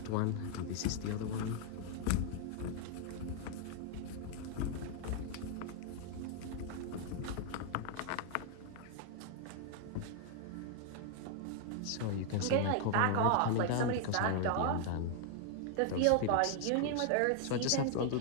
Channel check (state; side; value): different; both; correlation 0.00